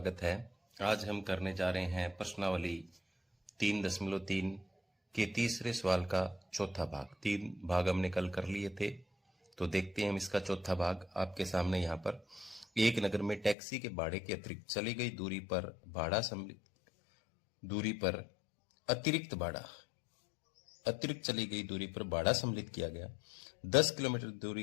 है। आज हम करने जा रहे हैं प्रश्नावली 3.3 के तीसरे सवाल का चौथा भाग। 3 भाग हमने कल कर लिए थे, तो देखते हैं हम इसका चौथा भाग। आपके सामने यहाँ पर एक नगर में टैक्सी के भाड़े के अतिरिक्त चली गई दूरी पर भाड़ा सम्मिलित किया गया। 10 किलोमीटर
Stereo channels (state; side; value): drops out; right; at 13.6 s